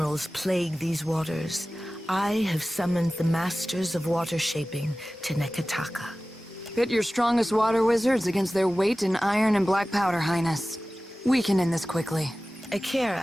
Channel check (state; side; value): normal; both; correlation 0.96